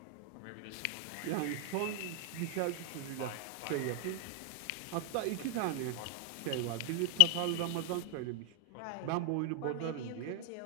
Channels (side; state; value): both; different; correlation 0.00